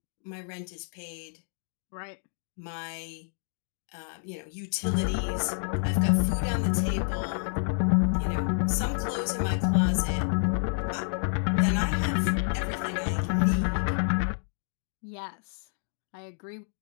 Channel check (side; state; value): right; silent; digital silence